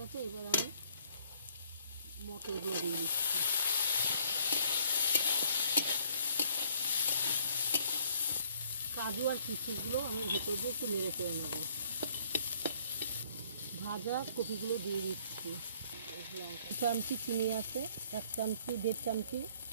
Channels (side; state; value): both; inverted; correlation -0.63